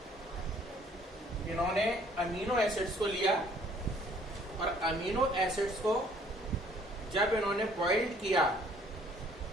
इन्होंने अमीनो एसिड्स को लिया और अमीनो एसिड्स को जब इन्होंने बॉइल्ड किया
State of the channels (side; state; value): both; normal; correlation 0.59